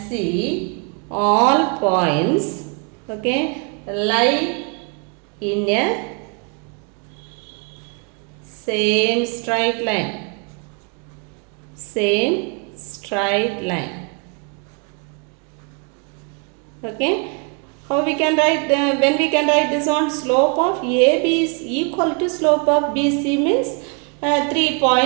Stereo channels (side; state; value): left; quieter; 36.1 dB